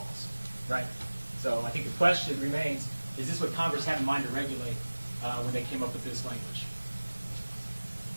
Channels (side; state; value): both; inverted; correlation -1.00